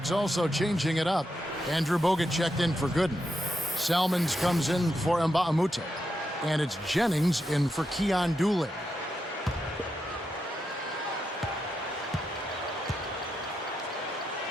also changing it up. Andrew Bogut checked in for Gooden. Salmons comes in for Mbamute. And it's Jennings in for Keon Dooling.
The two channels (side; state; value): both; normal; correlation 0.85